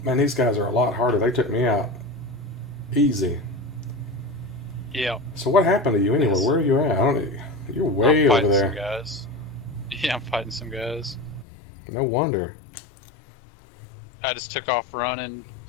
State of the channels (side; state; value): right; drops out; at 11.5 s